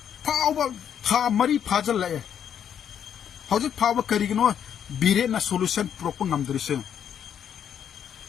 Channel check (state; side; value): quieter; right; 8.8 dB